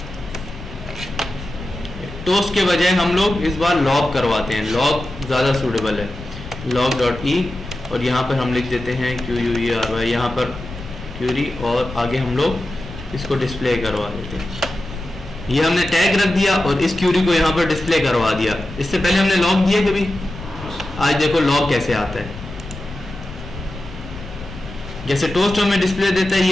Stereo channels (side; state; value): left; noise; rumble, 13 dB below the sound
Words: टोस्ट के बजाय हम लोग इस बार लॉग करवाते हैं, लॉग ज़्यादा सूटेबल है, लॉग डॉट ई, और यहाँ पर हम लिख देते हैं QUERY, यहाँ पर क्यूरी, और आगे हम लोग इसको डिस्प्ले करवा देते हैं। ये हमने टैग रख दिया और इस क्यूरी को यहाँ पर डिस्प्ले करवा दिया। इससे पहले हमने लॉग दिया कभी, आज देखो लॉग कैसे आता है। जैसे टोस्ट हमें डिस्प्ले देता है,